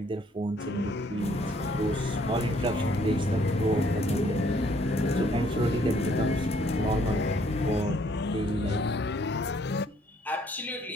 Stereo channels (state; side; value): normal; both; correlation 0.64